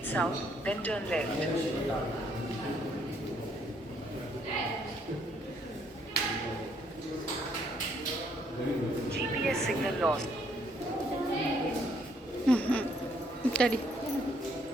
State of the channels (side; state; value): both; normal; correlation 0.69